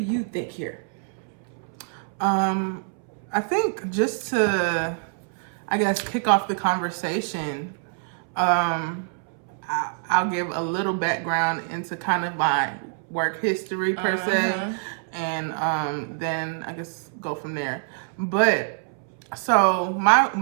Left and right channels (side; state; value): left; silent; 61 dB below the other